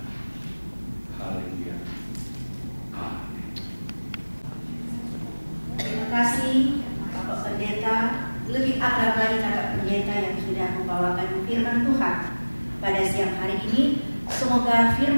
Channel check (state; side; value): inverted; both; correlation -1.00